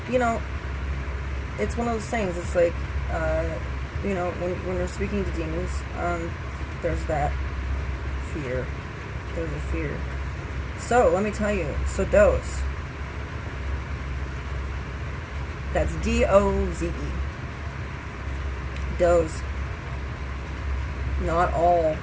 you know, it's one of those things. It's like, you know, when you're speaking to demons, there's that fear. There's a fear. So, let me tell you. So, Doze. That's D-O-Z-E. Doze. Not all.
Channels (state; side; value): identical; both; correlation 1.00